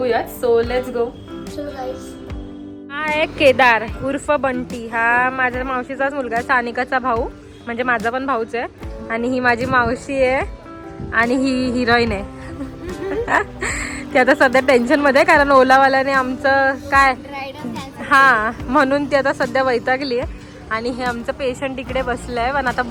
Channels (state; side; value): identical; both; correlation 1.00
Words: So let's go. हा आहे केदार उर्फ बंटी. हा माझ्या मावशीचाच मुलगा, सानिकाचा भाऊ, म्हणजे माझा पण भाऊच आहे. आणि ही माझी मावशी आहे आणि ही हिरोईन आहे. ती आता सध्या टेन्शन मध्ये, कारण ओलावाल्याने आमचं काय, हा म्हणून ती आता सध्या वैतागली आहे. आणि हे आमचं पेशंट इकडे बसलंय, पण आता